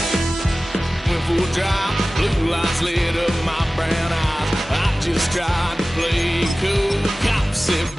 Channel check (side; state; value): both; normal; correlation 0.97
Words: went full drive, blue lights lit up my brown eyes. I just tried to play cool. Cop said,